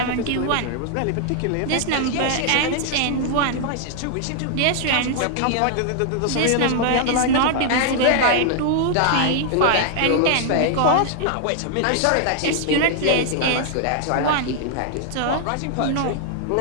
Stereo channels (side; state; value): both; different; correlation -0.01